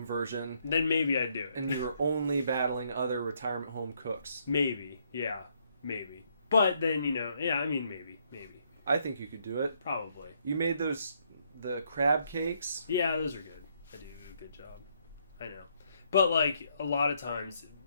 version? Then maybe I'd do it. And you were only battling other retirement home cooks? Maybe. Yeah. Maybe. But then, maybe. I think you could do it. Probably. You made the crab cakes? Yeah, those are good. I do a good job. I know. But, like, a lot of times,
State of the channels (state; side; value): inverted; both; correlation -0.72